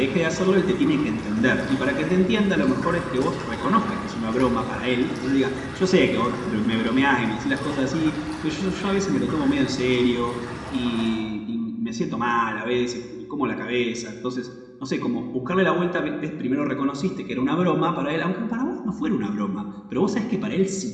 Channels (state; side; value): identical; both; correlation 1.00